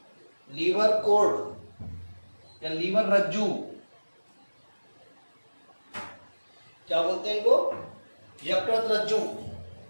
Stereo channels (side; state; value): both; inverted; correlation -1.00